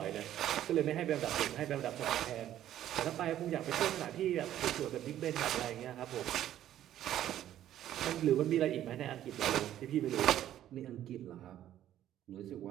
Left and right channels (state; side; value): quieter; left; 12.0 dB